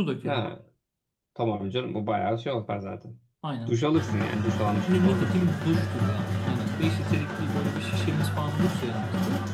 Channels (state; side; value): identical; both; correlation 1.00